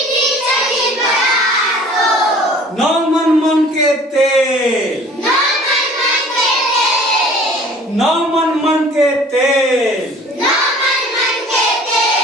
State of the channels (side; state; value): both; normal; correlation 0.49